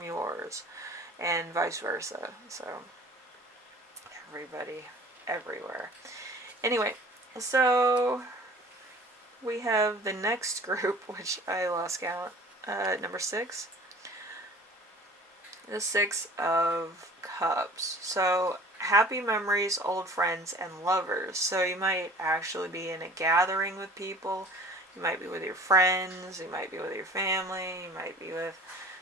yours, and vice versa. So everybody, everywhere. Anyway, so we have the next group, which I lost count. Number 6. The 6 of Cups. So happy memories, old friends, and lovers. So you might actually be in a gathering with people. You might be with your friends. You might be with your family. You might be with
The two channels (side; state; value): both; normal; correlation 0.46